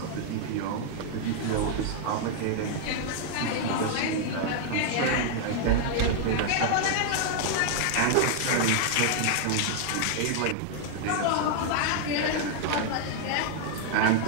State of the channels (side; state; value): both; different; correlation 0.00